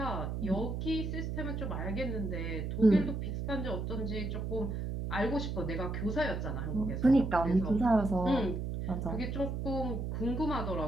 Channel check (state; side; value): noise; right; hum, 3 dB below the sound